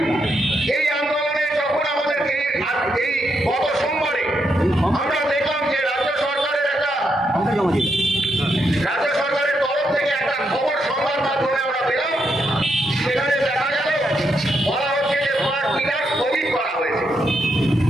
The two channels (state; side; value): normal; both; correlation 0.80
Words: এই আন্দোলনে যখন আমাদেরকে এই গত সোমবারে আমরা দেখলাম যে রাজ্য সরকারের তরফ থেকে একটা খবর সংবাদ মাধ্যমে আমরা পেলাম, সেখানে দেখা গেল বলা হচ্ছে যে স্মার্ট মিটার স্থগিত করা হয়েছে,